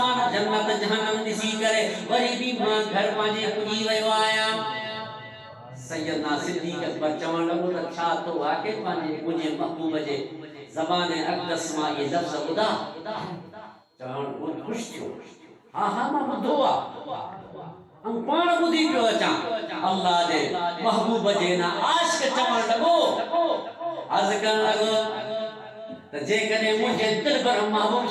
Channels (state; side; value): identical; both; correlation 1.00